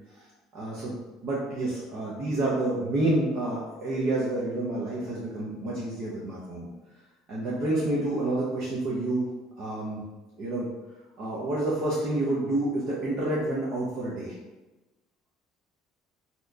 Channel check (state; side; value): normal; both; correlation 0.57